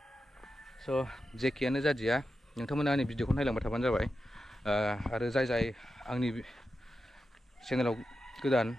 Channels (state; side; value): normal; both; correlation 0.90